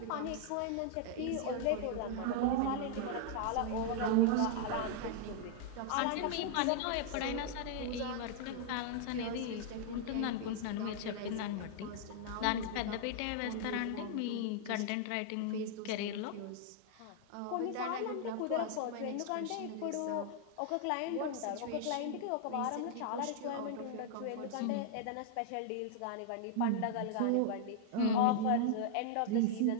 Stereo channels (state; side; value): different; both; correlation -0.01